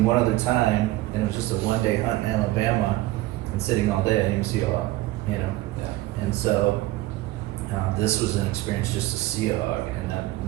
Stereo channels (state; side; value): quieter; left; 17.5 dB